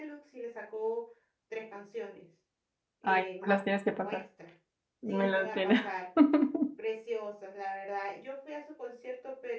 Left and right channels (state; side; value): identical; both; correlation 1.00